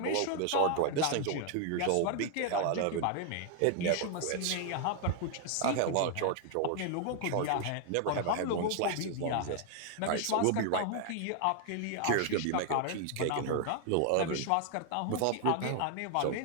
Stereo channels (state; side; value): different; both; correlation 0.00